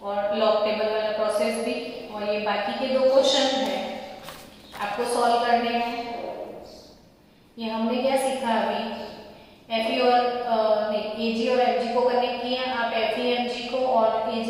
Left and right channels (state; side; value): identical; both; correlation 1.00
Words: और लॉग टेबल वाला प्रोसेस भी। और ये बाकी के 2 क्वेश्चन हैं आपको सॉल्व करने हैं। ये हमने क्या सीखा अभी, एफई और एजी और एमजी को कनेक्ट किया। आप एफई एमजी को और